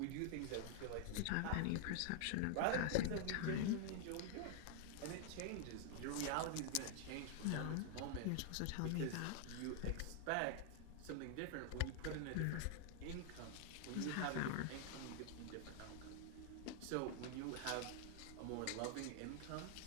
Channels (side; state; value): both; different; correlation 0.00